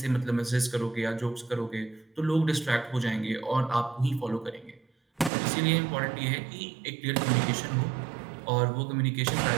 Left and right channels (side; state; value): left; drops out; at 5.3 s